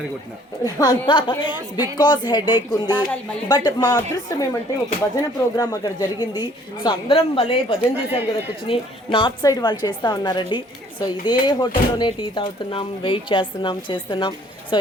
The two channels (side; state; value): both; normal; correlation 0.58